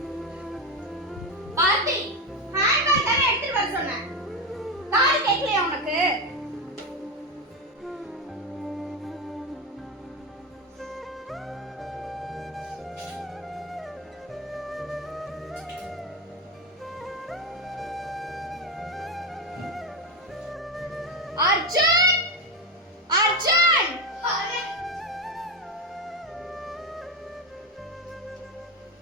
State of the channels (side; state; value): both; normal; correlation 0.13